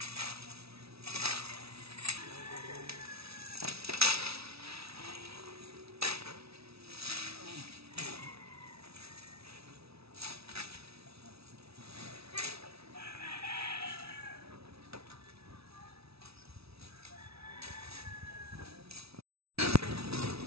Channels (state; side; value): late; left; 0.77 ms